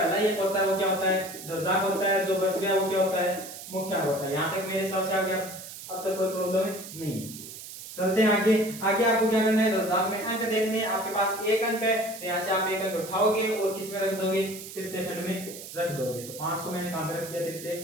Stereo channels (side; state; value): right; noise; hiss, 12 dB below the sound